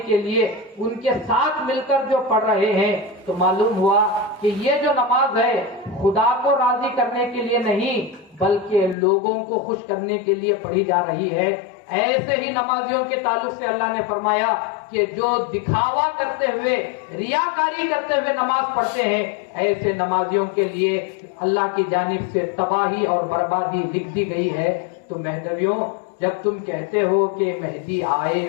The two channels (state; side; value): drops out; right; at 9.0 s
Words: کے لیے ان کے ساتھ مل کر جو پڑھ رہے ہیں تو معلوم ہوا کہ یہ جو نماز ہے خدا کو راضی کرنے کے لیے نہیں بلکہ لوگوں کو خوش کرنے کے لیے پڑھی جا رہی ہے۔ ایسے ہی نمازیوں کے تعلق سے اللہ نے فرمایا کہ جو دکھاوا کرتے ہوئے ریاکاری کرتے ہوئے نماز پڑھتے ہیں ایسے نمازیوں کے لیے اللہ کی جانب سے تباہی اور بربادی لکھ دی گئی ہے۔ تو مہدویوں، جب تم کہتے ہو کہ مہدی آئے